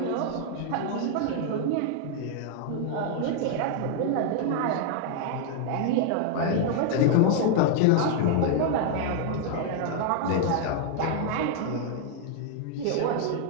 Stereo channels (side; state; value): both; different; correlation 0.00